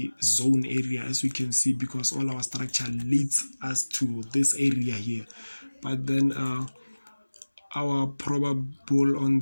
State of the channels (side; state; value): both; inverted; correlation -1.00